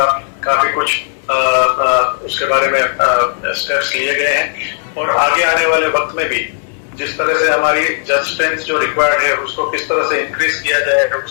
काफी कुछ उसके बारे में स्टेप्स लिए गए हैं और आगे आने वाले वक्त में भी जिस तरह से हमारी जज स्ट्रेंथ जो रिक्वायर्ड है उसको किस तरह से इंक्रीज किया जाए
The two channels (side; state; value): right; silent; digital silence